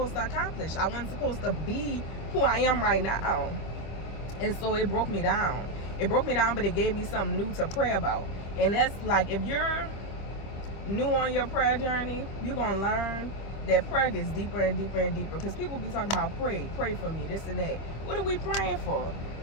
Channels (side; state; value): right; late; 25 ms